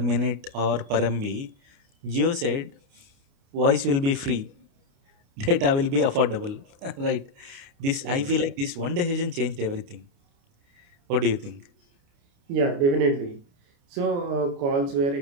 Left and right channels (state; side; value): late; left; 29 ms